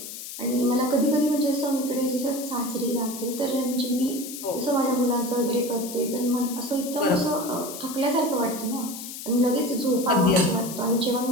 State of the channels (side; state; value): left; noise; hiss, 10 dB below the sound